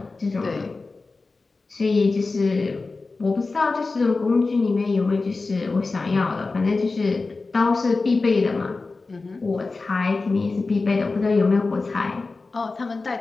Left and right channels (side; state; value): right; quieter; 3.8 dB